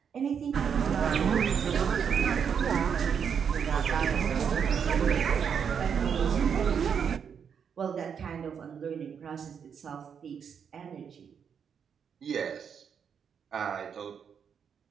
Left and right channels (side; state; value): left; quieter; 7.3 dB